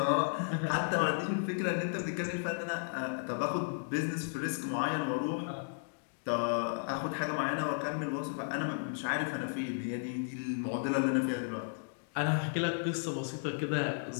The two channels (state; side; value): silent; right; digital silence